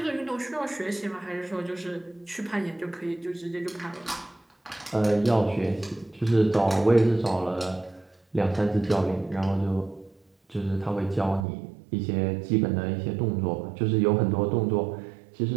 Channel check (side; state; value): left; drops out; at 11.5 s